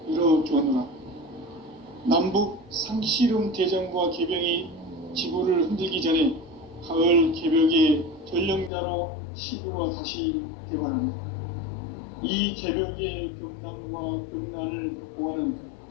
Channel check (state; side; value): drops out; right; at 8.7 s